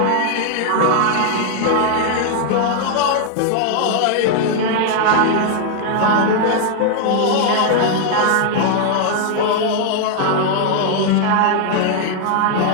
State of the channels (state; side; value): different; both; correlation 0.00